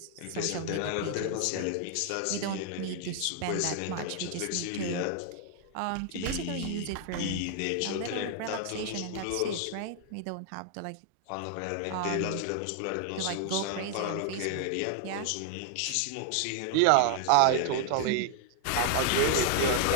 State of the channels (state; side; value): different; both; correlation 0.00